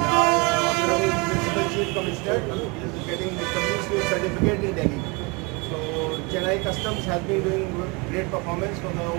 our Honorable Principal Chief Commissioner is getting the company's certificate in Delhi. So Chennai Customs has been doing great performance from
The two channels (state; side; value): quieter; left; 27.7 dB